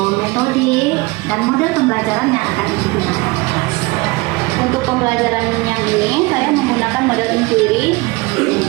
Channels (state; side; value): quieter; left; 23.8 dB